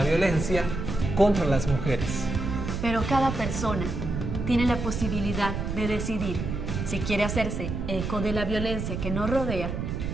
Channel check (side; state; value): right; noise; rumble, 4 dB below the sound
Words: violencia contra las mujeres. Pero cada persona tiene la posibilidad de decidir si quiere hacerse eco de la violencia que nos rodea